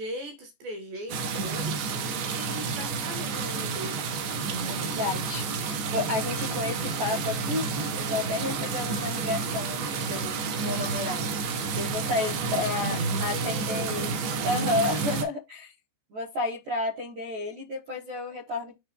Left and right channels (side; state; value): left; late; 14 ms